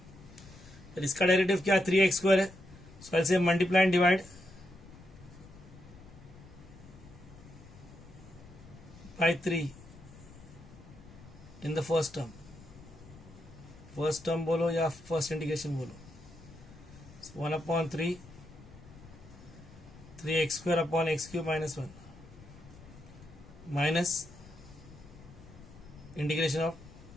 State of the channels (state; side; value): noise; left; rumble, 19 dB below the sound